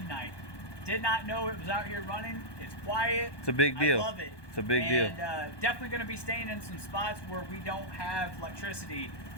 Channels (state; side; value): late; right; 1.2 ms